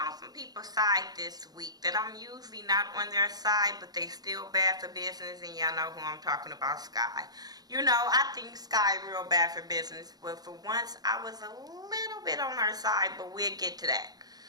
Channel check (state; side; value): late; left; 0.19 ms